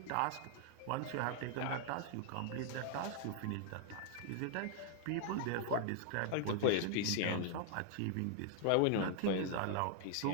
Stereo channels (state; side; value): different; both; correlation 0.00